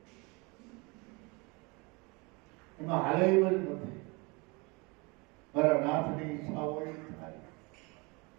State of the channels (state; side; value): quieter; left; 27.9 dB